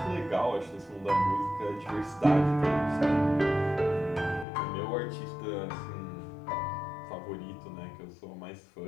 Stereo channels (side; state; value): right; drops out; at 4.5 s